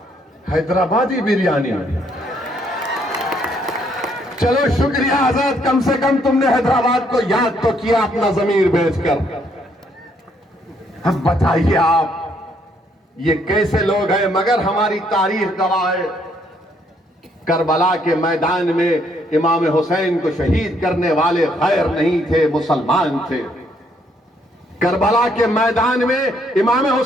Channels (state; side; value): normal; both; correlation 0.70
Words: हैदराबादी बिरयानी। चलो शुक्रिया आजाद, कम से कम तुमने हैदराबाद को याद तो किया अपना जमीर बेचकर। अब बताइए आप, ये कैसे लोग हैं? मगर हमारी तारीख गवाह है, करबला के मैदान में इमाम हुसैन को शहीद करने वाले गैर नहीं थे, मुसलमान थे। करबला के मैदान में इमाम